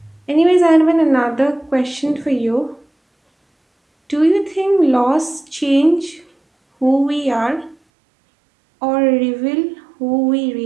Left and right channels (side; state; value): left; drops out; at 7.8 s